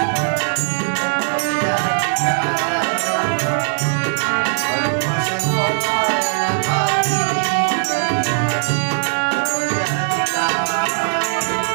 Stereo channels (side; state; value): left; silent; digital silence